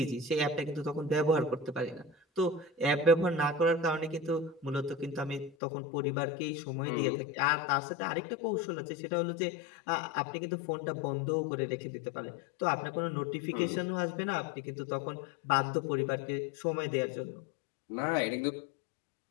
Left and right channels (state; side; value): drops out; right; at 5.6 s